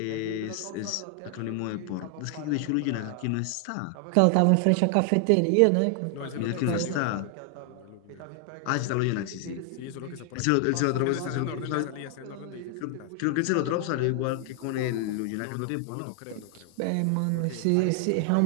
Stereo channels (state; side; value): different; both; correlation 0.00